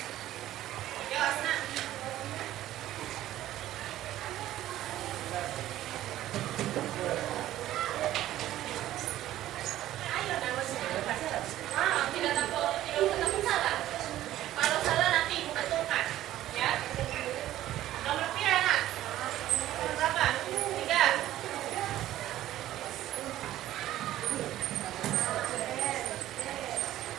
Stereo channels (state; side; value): quieter; left; 13.8 dB